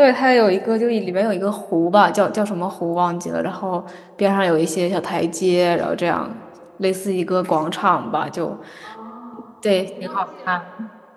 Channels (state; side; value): identical; both; correlation 1.00